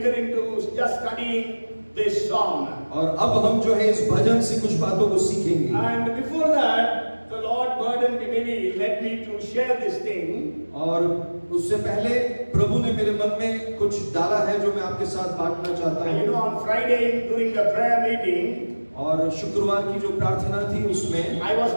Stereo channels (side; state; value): both; inverted; correlation -1.00